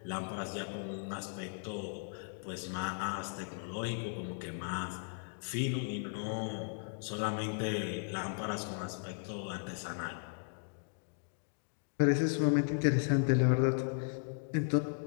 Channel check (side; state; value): right; silent; digital silence